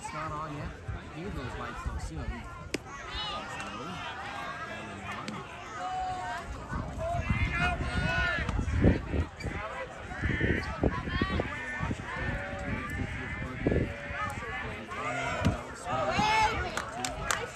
not on yet. Hear those lights though soon.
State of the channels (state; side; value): identical; both; correlation 1.00